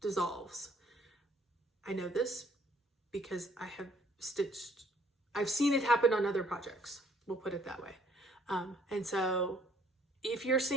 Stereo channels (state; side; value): normal; both; correlation 0.62